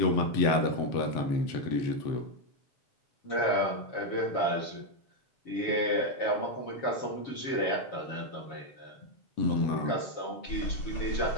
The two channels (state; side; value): late; right; 7.1 ms